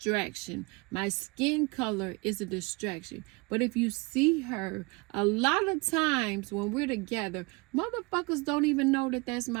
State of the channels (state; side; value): quieter; left; 27.0 dB